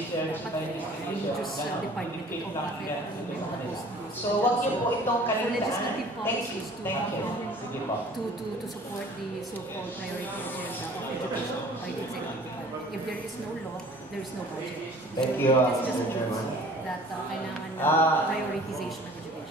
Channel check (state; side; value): normal; both; correlation 0.49